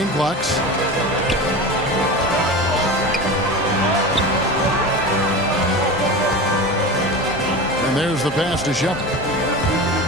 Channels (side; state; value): both; normal; correlation 0.28